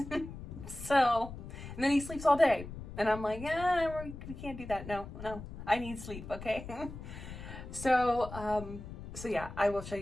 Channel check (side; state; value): left; noise; rumble, 11 dB below the sound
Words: So, and then he sleeps all day. And I'm like, we can't do that. No, I need sleep, okay? So yeah, I will show